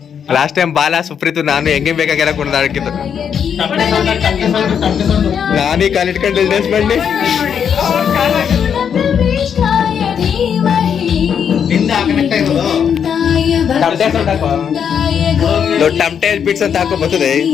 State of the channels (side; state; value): right; quieter; 7.8 dB